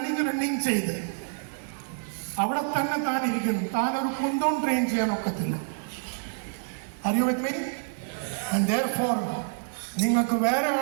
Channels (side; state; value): left; silent; digital silence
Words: ചെയ്ത് അവിടെ തന്നെ താൻ ഇരിക്കുന്നു. താൻ ഒരു കുന്തം ട്രെയിൻ ചെയ്യാൻ ഒക്കത്തില്ല. Are you with me? And therefore നിങ്ങൾക്ക് വേറെ